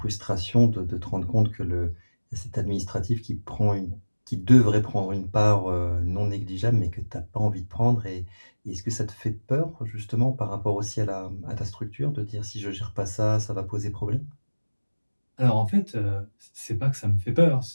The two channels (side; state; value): both; inverted; correlation -1.00